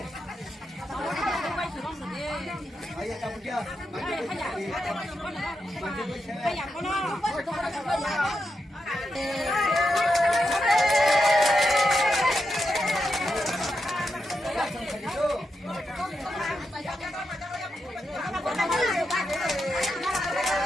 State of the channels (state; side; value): normal; both; correlation 0.85